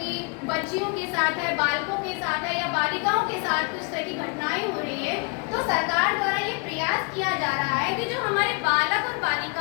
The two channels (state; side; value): quieter; right; 32.6 dB